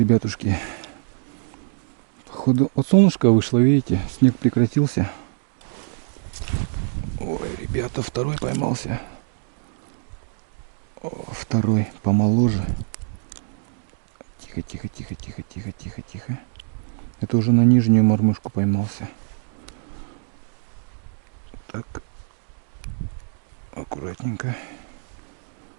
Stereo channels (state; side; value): silent; left; digital silence